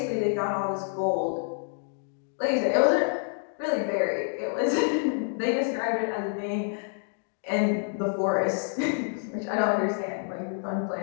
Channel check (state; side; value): silent; right; 59 dB below the other